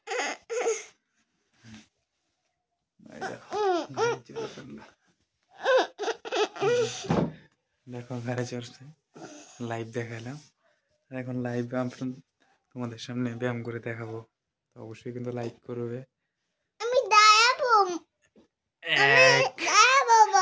দেখো ঘরে চড়ছে। লাইভ দেখালাম, এখন লাইভ তোমাদের সামনে ব্যায়াম করে দেখাবো। তো অবশ্যই কিন্তু লাইক করবে।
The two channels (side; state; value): both; identical; correlation 1.00